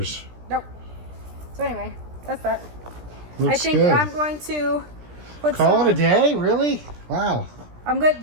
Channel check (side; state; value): left; late; 17 ms